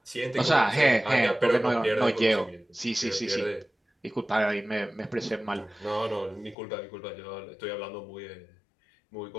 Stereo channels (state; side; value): drops out; right; at 6.6 s